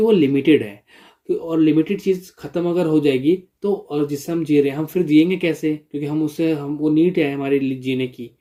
वो लिमिटेड है। और लिमिटेड चीज़ ख़त्म अगर हो जाएगी तो, और जिससे हम जी रहे हैं, हम फिर जिएंगे कैसे? क्योंकि हम उससे, हम वो नीड है हमारे लिए जीने की,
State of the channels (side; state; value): both; identical; correlation 1.00